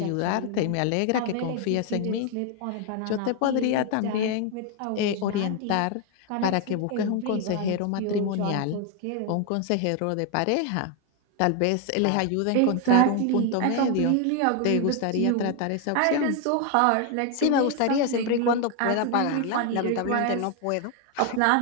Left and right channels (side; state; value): both; different; correlation 0.01